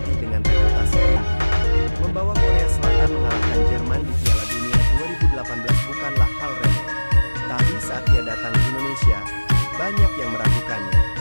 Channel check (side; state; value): both; inverted; correlation -1.00